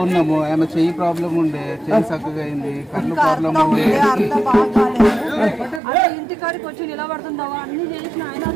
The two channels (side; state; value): left; drops out; at 5.8 s